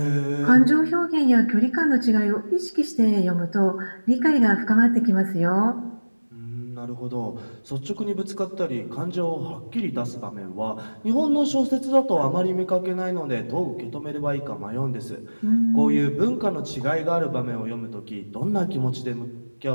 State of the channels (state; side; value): inverted; both; correlation -1.00